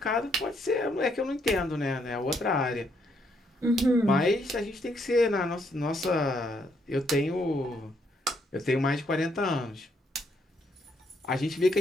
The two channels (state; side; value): normal; both; correlation 0.73